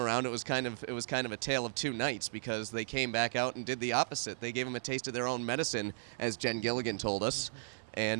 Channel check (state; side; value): silent; left; 54 dB below the other